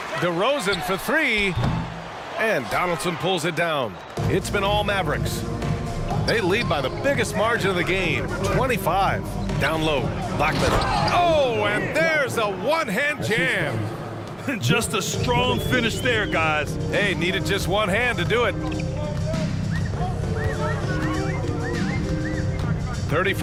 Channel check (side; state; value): both; identical; correlation 1.00